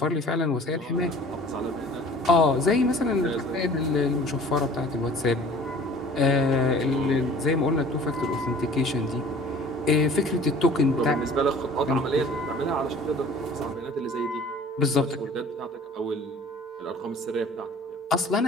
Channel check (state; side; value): normal; both; correlation 0.47